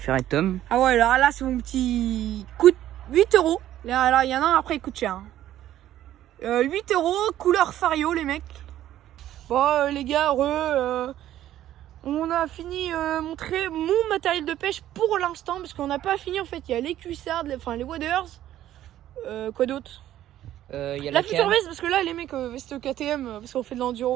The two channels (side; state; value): left; quieter; 12.6 dB